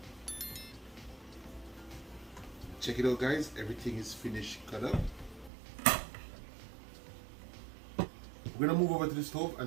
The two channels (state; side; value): drops out; left; at 5.5 s